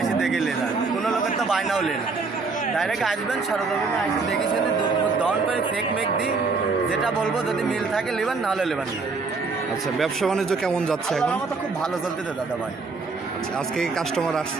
এসে দেখে লেন। কোনো লোকের তো বায়নাও লেন, ডাইরেক্ট আসবেন সরজমিনে এসে দেখে শুনে দুধ দহন করে ফেক মেক দিই, যেটা বলবো যদি মিল থাকে নেবেন, নাহলে নেবেন না। আচ্ছা, ব্যবসা বাণিজ্য কেমন যাচ্ছে এখন? আমার তো খুব ভালো চলতেছে দাদা ভাই। আচ্ছা, আজকে কাস্টমার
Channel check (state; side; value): quieter; left; 4.2 dB